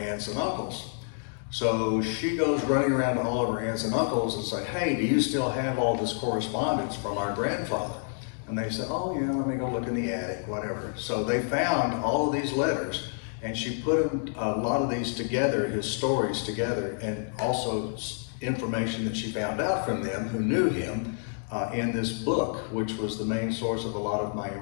aunts and uncles. So she goes running around to all of her aunts and uncles and say, "Hey, do you still have all this correspondence from our grandfather?" And they said, "Oh yeah, let me go look in the attic, whatever." So they found all of these letters, and she put a lot of these together, his stories together, and also information that she found out from them who knew him in this book, which was the main source of a lot of my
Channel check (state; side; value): silent; right; 59 dB below the other